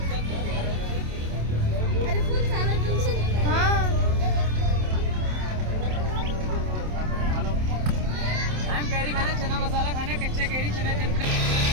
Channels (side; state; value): left; late; 27 ms